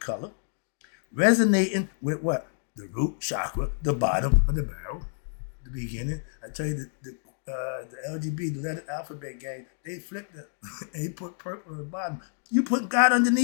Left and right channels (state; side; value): silent; right; digital silence